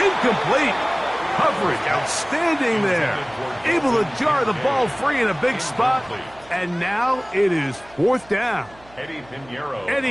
incomplete. Coverage outstanding there. Able to jar the ball free in a big spot. And now it is 4th down.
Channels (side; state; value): right; noise; hum, 25 dB below the sound